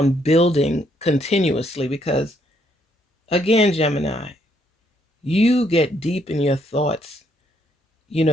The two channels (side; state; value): both; normal; correlation 0.71